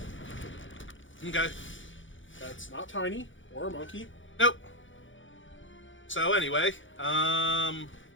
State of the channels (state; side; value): late; right; 0.56 ms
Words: Okay. That's not tiny, or a monkey. Nope. So anyway,